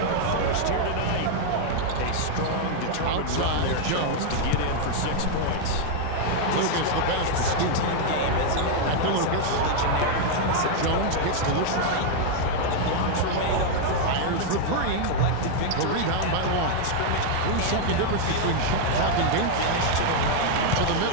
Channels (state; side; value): different; both; correlation 0.00